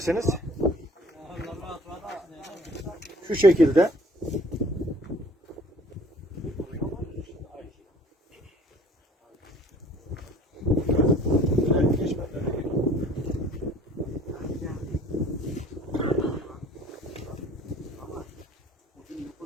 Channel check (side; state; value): both; normal; correlation 0.52